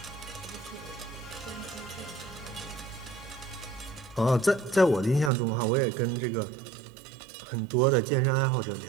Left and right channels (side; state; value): left; drops out; at 5.3 s